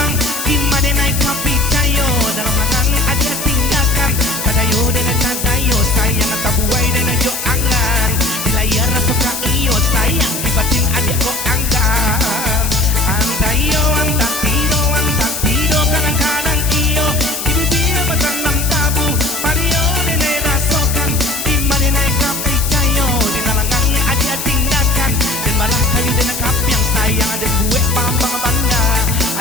Gimana naik kapi cayo, dalam mangan adia tinggalkan. Kadayo dengan kadayo, sayang tabuai dengan jo angan. Di layar suka iyo, sayang di batin adia kok anggan. Anta iyo, anta tido, kadang-kadang iyo. Di bibir bertanam tabu, pario nenek rasokan. Gimana naik kapi cayo, di nalangan adia tinggalkan. Dan malah kayu dengan kapi yang sayang, ada gue pambang bangga.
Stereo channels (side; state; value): left; noise; hiss, 5 dB below the sound